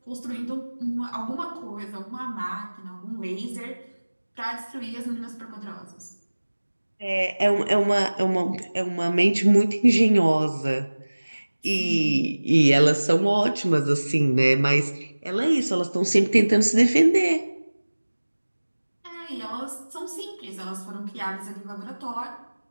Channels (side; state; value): both; inverted; correlation -1.00